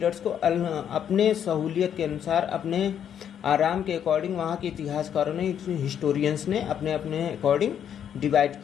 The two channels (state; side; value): quieter; right; 9.0 dB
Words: को अपने सहूलियत के अनुसार, अपने आराम के अकॉर्डिंग वहाँ के इतिहासकारों ने, हिस्टोरियंस ने अपने अपने अकॉर्डिंग डिवाइड